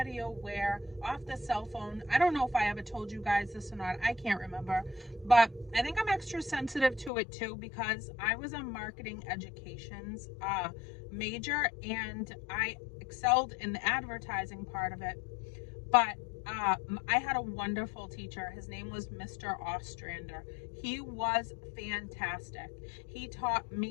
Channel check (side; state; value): right; drops out; at 7.1 s